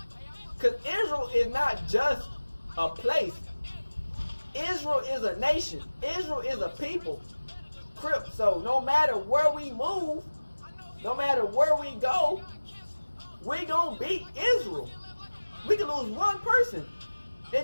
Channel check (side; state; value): both; inverted; correlation -1.00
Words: Because Israel is not just a place. Israel is a nation. Israel is a people. Crip. So no matter where we move, no matter where we go, we gonna beat Israel. We can lose one person.